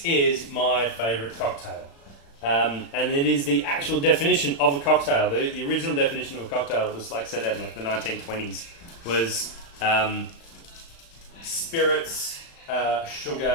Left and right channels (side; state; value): right; late; 35 ms